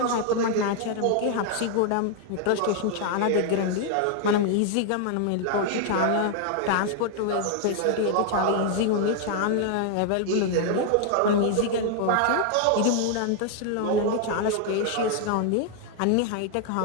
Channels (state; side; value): different; both; correlation 0.00